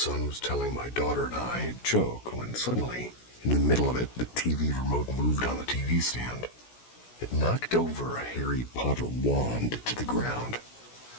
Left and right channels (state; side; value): late; right; 16 ms